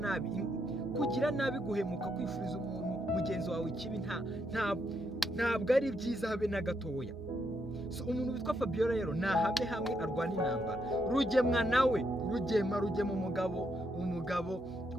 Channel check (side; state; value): right; noise; hum, 19 dB below the sound